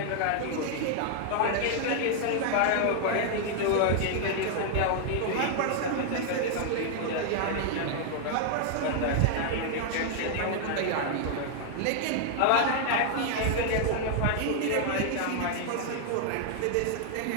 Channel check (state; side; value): different; both; correlation 0.00